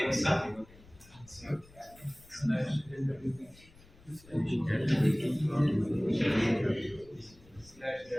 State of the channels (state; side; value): noise; left; rumble, 24 dB below the sound